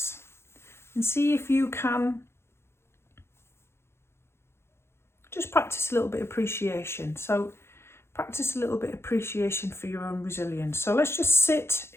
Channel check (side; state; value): right; late; 0.12 ms